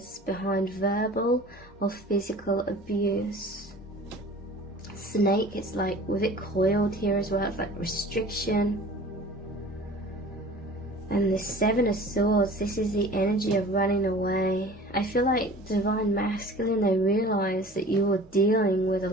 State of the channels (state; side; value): normal; both; correlation 0.43